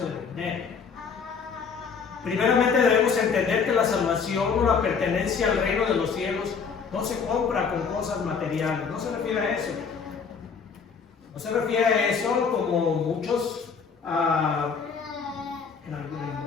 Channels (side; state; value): right; quieter; 5.9 dB